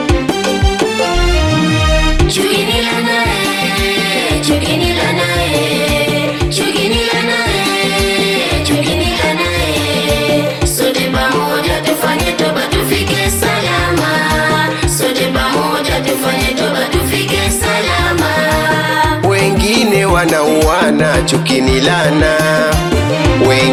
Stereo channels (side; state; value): both; identical; correlation 1.00